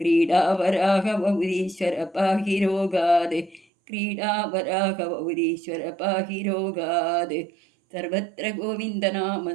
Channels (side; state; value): left; drops out; at 3.7 s